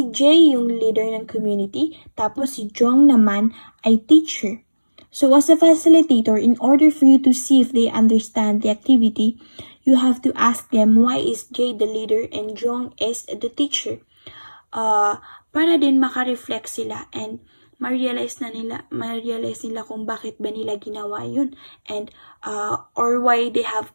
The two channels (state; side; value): inverted; both; correlation -1.00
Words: J yung leader ng community, tapos si Jong naman ay teacher. So as a facilitator, in order for you to see if they understand the activity, you have to ask them why is J the leader and Jong is the teacher. Para din makareflect sila and ma-realize nila kung bakit ba nila ginawa yun and or why they